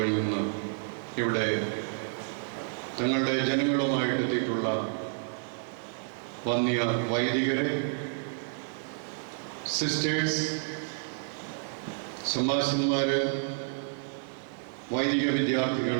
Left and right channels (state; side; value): silent; left; 58 dB below the other